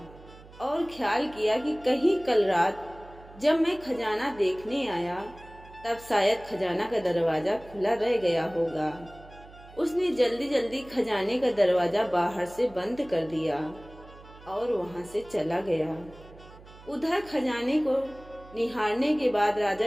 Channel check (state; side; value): noise; right; hum, 20 dB below the sound